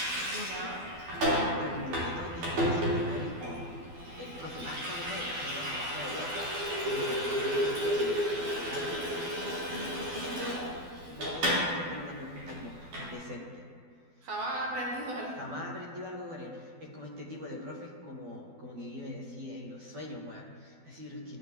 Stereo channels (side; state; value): left; late; 12 ms